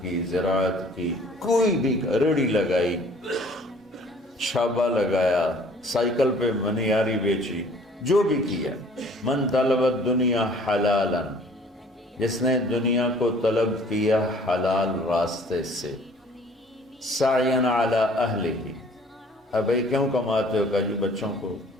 کی، زراعت کی، کوئی بھی ریڑھی لگائی، چھابا لگایا، سائیکل پہ منیاری بیچی، جو بھی کیا، من طلب الدنیا حلالا، جس نے دنیا کو طلب کیا حلال راستے سے، سعیا علی اہلہ، اب بھائی کیوں کماتے ہو؟ کہا جی بچوں کو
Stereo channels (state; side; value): normal; both; correlation 0.54